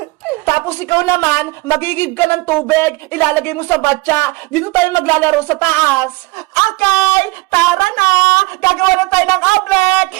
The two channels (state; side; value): quieter; left; 23.2 dB